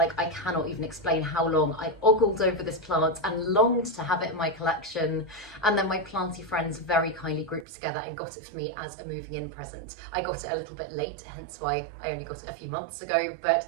I cannot even explain how long I ogled over this plant and longed to have it in my collection. And then my planty friends very kindly grouped together and got it for me as a moving in present. I got it a little bit late, hence why I only got it a few months ago, but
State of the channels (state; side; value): drops out; left; at 7.7 s